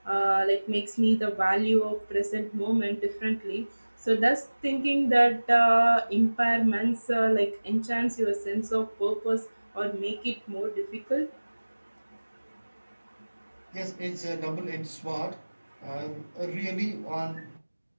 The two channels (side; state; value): both; inverted; correlation -1.00